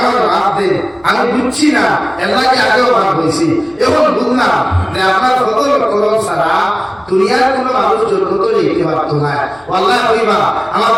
মাফ দে আমি বুঝছি না আল্লাহকে আগেও মাফ হইছি এখন বুঝলাম যে আপনার ফজল করম ছাড়া দুনিয়ার কোনো মানুষ জন্য তো যেতে পারতো না। আল্লাহ কইবা আমার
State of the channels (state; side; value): noise; left; hum, 29 dB below the sound